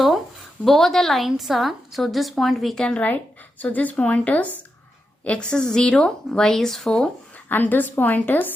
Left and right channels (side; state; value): both; normal; correlation 0.87